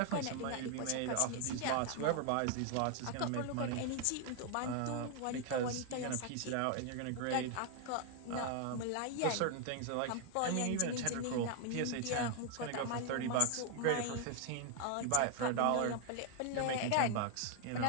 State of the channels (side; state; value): both; different; correlation 0.00